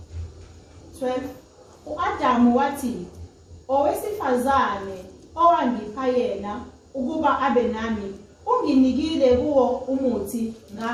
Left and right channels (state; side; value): identical; both; correlation 1.00